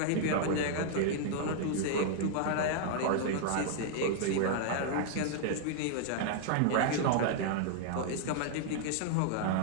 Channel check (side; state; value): both; different; correlation -0.01